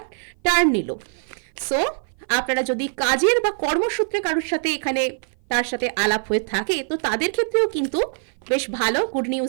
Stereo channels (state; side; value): silent; left; 56 dB below the other